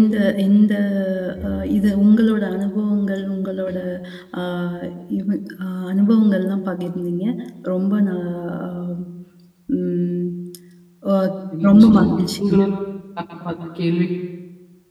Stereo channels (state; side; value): identical; both; correlation 1.00